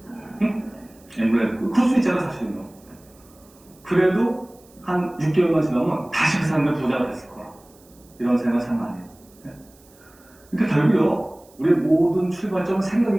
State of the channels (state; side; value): noise; right; hiss, 28 dB below the sound